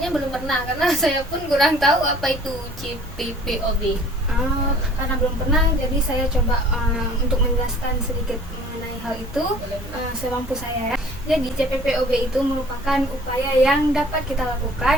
belum pernah karena saya pun kurang tahu apa itu CPPOB. Karena belum pernah, jadi saya coba untuk menjelaskan sedikit mengenai hal itu semampu saya ya. Jadi CPPOB itu merupakan upaya yang dapat kita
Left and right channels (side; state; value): both; normal; correlation 0.51